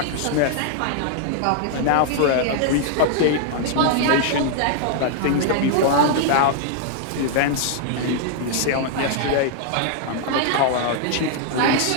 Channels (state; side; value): different; both; correlation -0.01